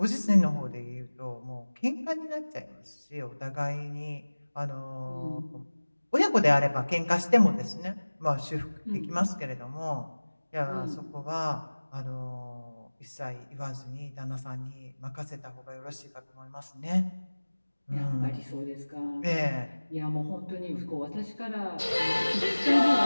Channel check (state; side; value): inverted; both; correlation -1.00